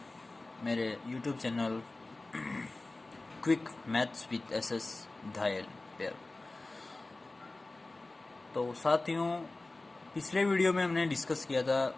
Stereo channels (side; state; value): right; quieter; 3.1 dB